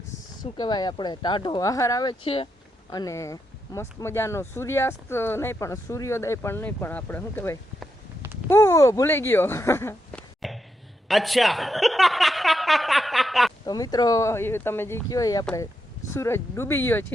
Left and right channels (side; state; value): both; normal; correlation 0.83